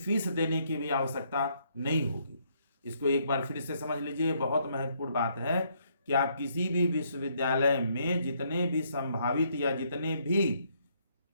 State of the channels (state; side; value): inverted; both; correlation -0.71